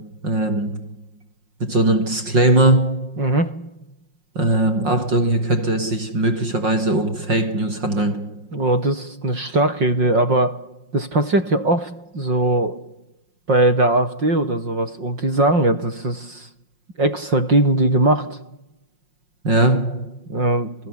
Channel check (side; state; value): left; late; 5.6 ms